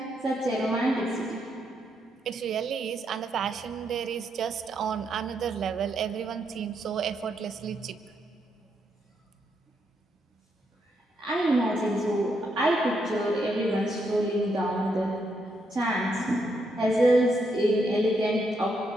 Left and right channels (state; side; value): normal; both; correlation 0.78